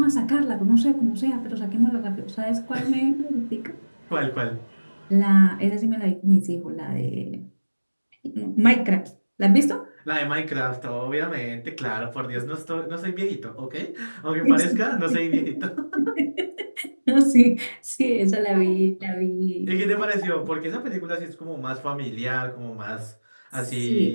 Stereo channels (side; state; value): both; inverted; correlation -1.00